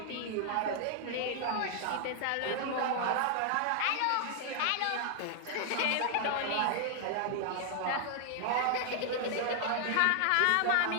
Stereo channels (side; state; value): both; different; correlation 0.00